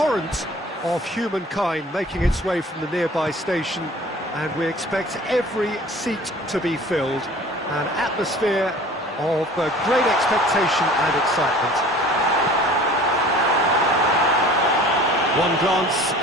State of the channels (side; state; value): both; normal; correlation 0.46